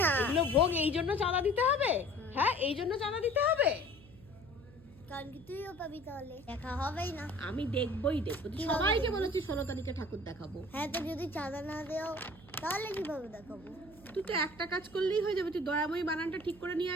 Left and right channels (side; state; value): right; noise; hum, 22 dB below the sound